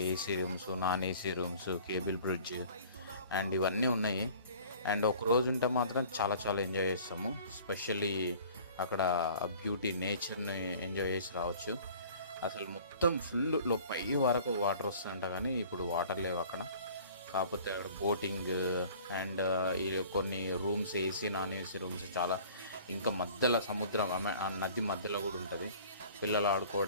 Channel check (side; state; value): both; inverted; correlation -0.49